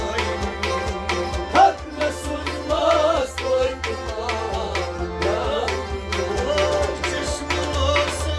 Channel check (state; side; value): identical; both; correlation 1.00